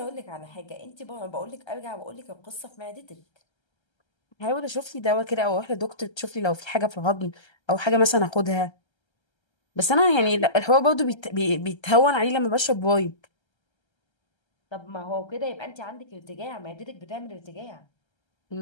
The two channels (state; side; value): late; right; 1.3 ms